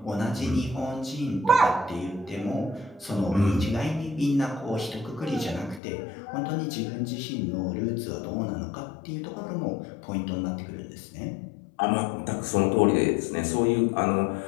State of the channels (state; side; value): drops out; right; at 5.8 s